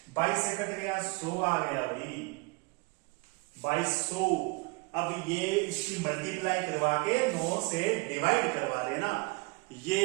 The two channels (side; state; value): left; quieter; 28.1 dB